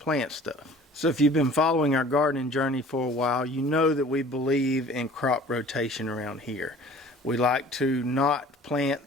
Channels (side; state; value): both; normal; correlation 0.48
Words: stuff. So if you've been following our gardening journey for a while, you know that we believe in crop rotation around here. We like to not plant